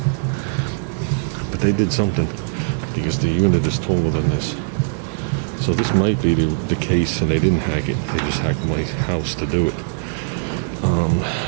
but they did something because the unit is taller than this. So this might be the case, and they didn't hack it. They just hacked my house to do it.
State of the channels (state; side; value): silent; left; 63 dB below the other